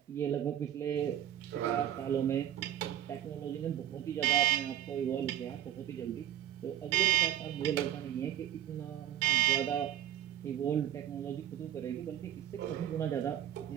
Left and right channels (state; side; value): quieter; left; 11.1 dB